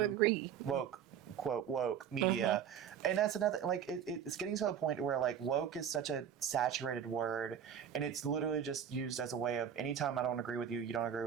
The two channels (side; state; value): left; quieter; 8.4 dB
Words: agree. Woke, quote woke media, and that's another. Like it's getting to a point where like woke is such a saturated word, and it's literally just used as a way of anytime I don't agree with you, you don't agree